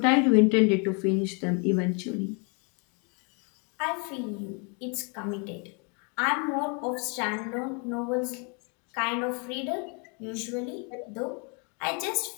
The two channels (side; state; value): right; quieter; 35.7 dB